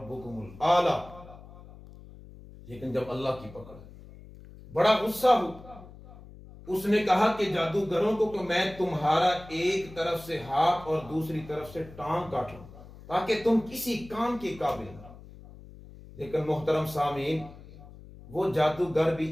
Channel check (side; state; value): left; noise; hum, 18 dB below the sound